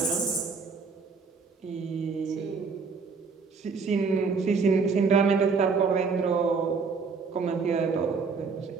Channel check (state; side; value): quieter; left; 5.0 dB